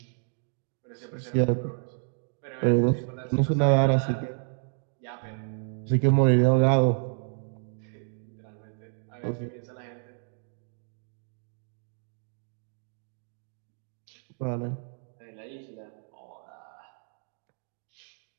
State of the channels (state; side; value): silent; left; digital silence